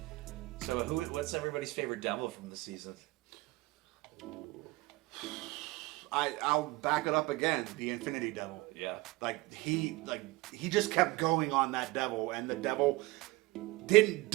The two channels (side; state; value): left; quieter; 21.3 dB